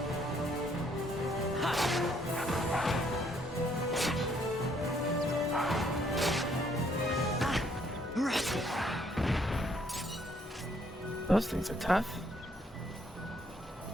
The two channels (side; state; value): both; normal; correlation 0.68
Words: Those things are tough.